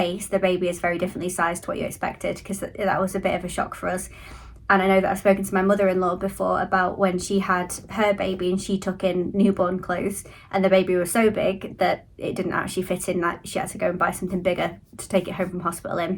the baby is very differently sized to what you expected, because that was a bit of a shock for us. And I know that I've spoken to my mother-in-law before about when she had her baby and she took in newborn clothes and the baby was so big that it didn't actually fit in, that she had to go and buy something bigger to take it home from hospital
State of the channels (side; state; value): both; identical; correlation 1.00